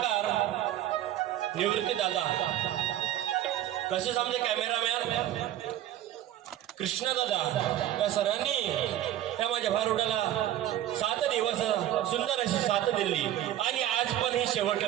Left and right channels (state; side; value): quieter; left; 12.5 dB